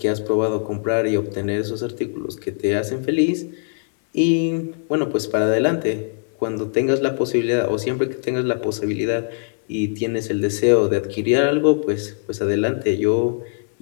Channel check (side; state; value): right; silent; 60 dB below the other